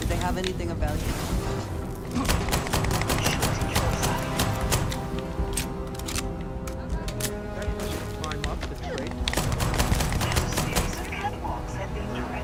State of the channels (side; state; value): both; identical; correlation 1.00